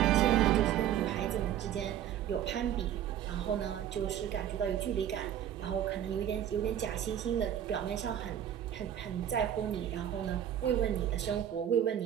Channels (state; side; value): quieter; left; 10.5 dB